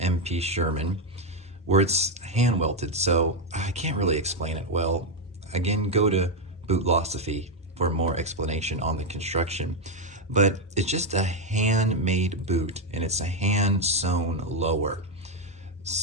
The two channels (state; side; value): normal; both; correlation 0.04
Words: Sherman where it's hand welted, so I can't really explain it well. Again, go to Bootlosophy for more explanation on the construction. But it's just a handmade boot, and it's a hand sewn lower.